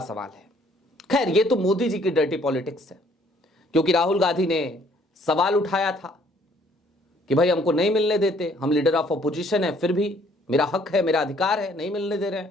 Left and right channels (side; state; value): both; normal; correlation 0.62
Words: सवाल है। खैर, ये तो मोदी जी की डर्टी पॉलिटिक्स है, क्योंकि राहुल गांधी ने सवाल उठाया था कि भाई हमको नहीं मिलने देते, हम लीडर ऑफ अपोजिशन है, फिर भी मेरा हक है, मेरा अधिकार है, नहीं मिलने दे रहे